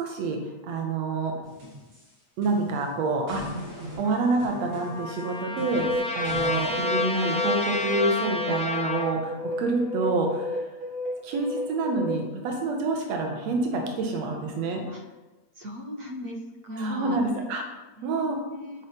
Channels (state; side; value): late; left; 8.4 ms